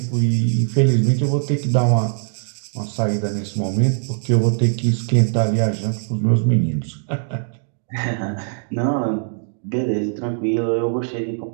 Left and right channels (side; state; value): left; silent; digital silence